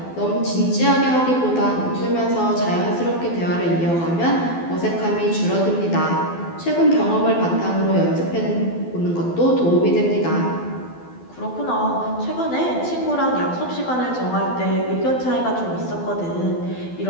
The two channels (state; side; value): late; right; 12 ms